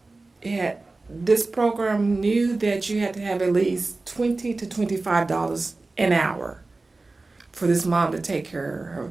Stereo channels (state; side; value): quieter; left; 3.4 dB